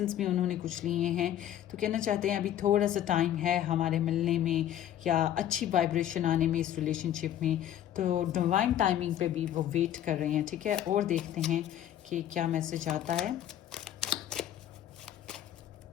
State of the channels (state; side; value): quieter; right; 11.4 dB